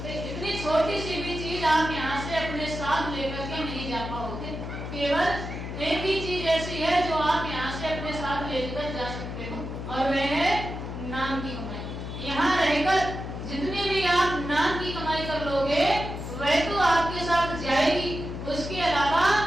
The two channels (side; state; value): left; noise; hum, 7 dB below the sound